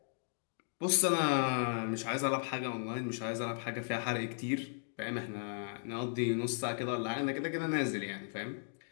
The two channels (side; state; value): right; silent; digital silence